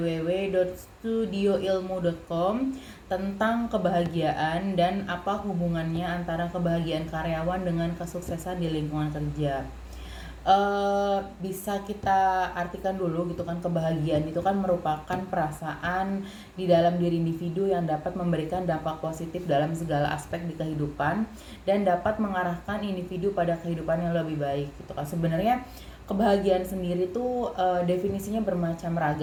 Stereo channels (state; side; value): identical; both; correlation 1.00